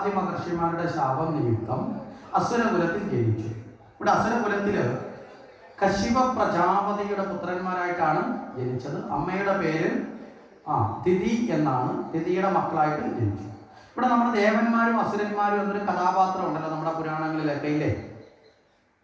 മഹർഷിമാരുടെ ശാപം നിമിത്തം അസുരകുലത്തിൽ ജനിച്ചു. ഇവിടെ അസുരകുലത്തില് കശ്യപ പ്രജാപതിയുടെ പുത്രന്മാരായിട്ടാണ് ജനിച്ചത്. അമ്മയുടെ പേര് തിഥി എന്നാണ്. തിഥിയുടെ മക്കളായിട്ട് ജനിച്ചു. ഇവിടെ നമ്മുടെ ദേവന്മാരും അസുരന്മാരും എന്നൊരു കഥാപാത്രം ഉണ്ടല്ലോ നമ്മുടെ പുരാണങ്ങളിലൊക്കെ, ഇല്ലേ?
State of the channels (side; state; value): both; identical; correlation 1.00